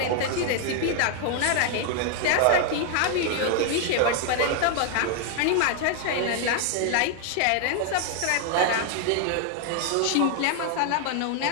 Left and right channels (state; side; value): different; both; correlation 0.00